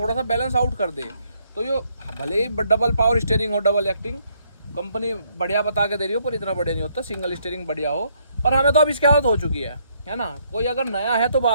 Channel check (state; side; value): inverted; both; correlation -0.71